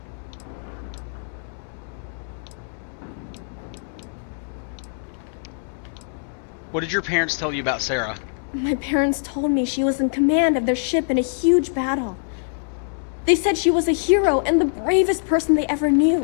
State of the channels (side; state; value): right; silent; digital silence